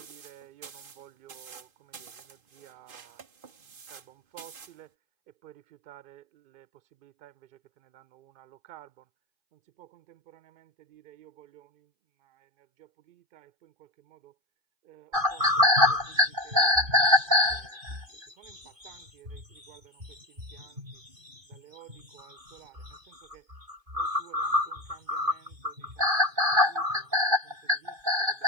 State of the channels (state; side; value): late; left; 2.5 ms